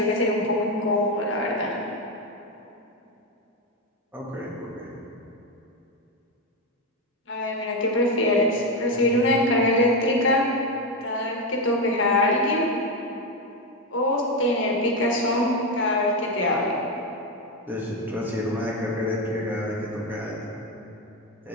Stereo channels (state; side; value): normal; both; correlation 0.10